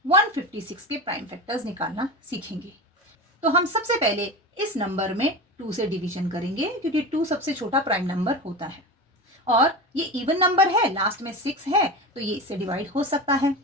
156 के प्राइम फैक्टर्स निकालना सीखेंगे। तो हम सबसे पहले इस नंबर में 2 से डिवीजन करेंगे, क्योंकि 2 सबसे छोटा प्राइम नंबर होता है और ये इवन नंबर है, लास्ट में 6 है, तो ये इससे डिवाइड हो सकता है।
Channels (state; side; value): normal; both; correlation 0.26